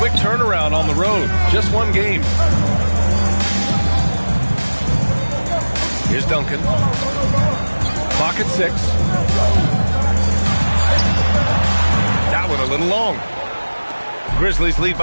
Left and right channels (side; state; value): both; inverted; correlation -1.00